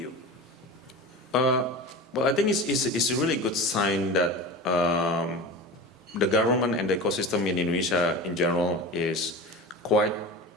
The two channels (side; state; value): both; normal; correlation 0.31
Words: Well, I think it's a really good sign that the government and the ecosystem in Indonesia in general is quite